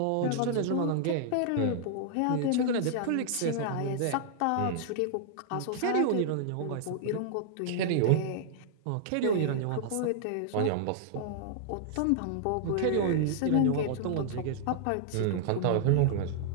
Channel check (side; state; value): both; different; correlation -0.01